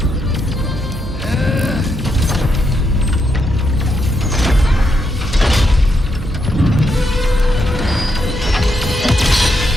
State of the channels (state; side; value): noise; right; hum, 9 dB below the sound